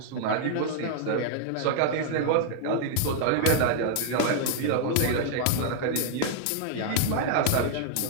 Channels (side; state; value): both; different; correlation -0.01